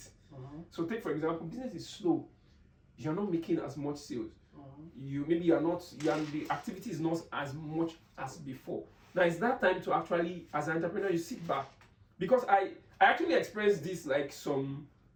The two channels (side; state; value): both; identical; correlation 1.00